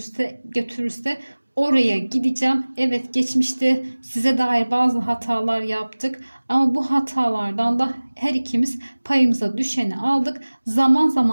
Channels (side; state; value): both; inverted; correlation -1.00